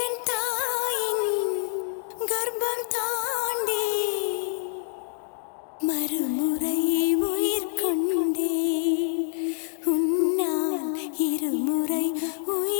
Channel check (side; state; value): right; silent; digital silence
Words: தாயின் கர்ப்பம் தாண்டி மறுமுறை உயிர் கொண்டேன், உன்னால் இருமுறை